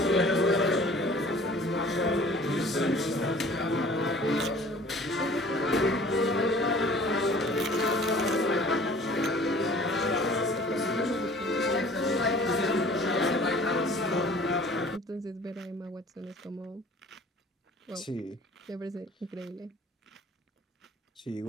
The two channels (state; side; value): normal; both; correlation 0.49